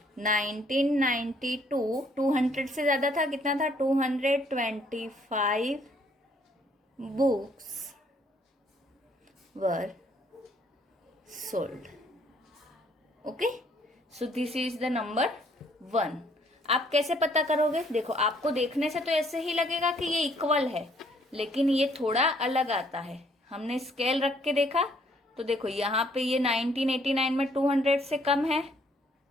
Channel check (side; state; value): both; normal; correlation 0.65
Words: 1992 200 से ज्यादा था. कितना था? 225 books were sold. Okay, so this is the number 1. आप कैसे पता करोगे? देखो आपको देखने से तो ऐसे ही लगेगा कि ये इक्वल है, लेकिन ये थोड़ा अलग आता है. हमने स्केल रख के देखा तो देखो यहाँ पे ये 1989 में 200 से कम है,